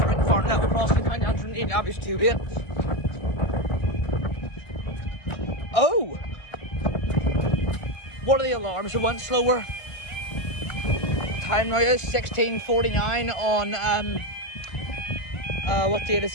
now across the county Antrim, the obvious 2-8. Oh! What are the alarms that went slower? Time now is 16:49 on what date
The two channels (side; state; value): right; late; 1.5 ms